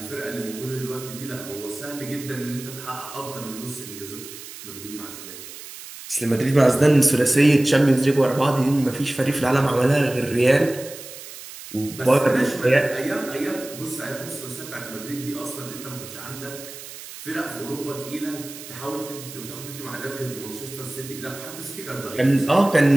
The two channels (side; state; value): right; noise; hiss, 14 dB below the sound